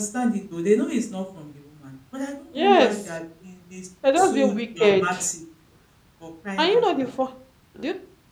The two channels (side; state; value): both; identical; correlation 1.00